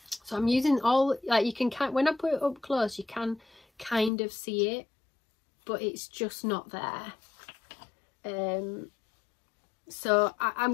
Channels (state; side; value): drops out; right; at 4.1 s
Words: So I'm using all, like you can, when I put it up close, you can kind of see it, but it's just not there. So